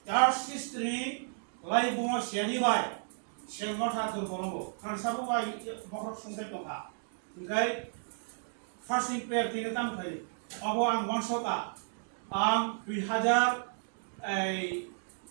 চার্চ হিস্ট্রি লাই বুমা সেনিবাই সেলমঠা দুর্বলঙ্গ কারণ সাবুবাই মকর সংসার टंका ओमफ्राय फार्स्टिं प्रेयार थैनो दाम थायो अब आं मनसका आं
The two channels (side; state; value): left; silent; digital silence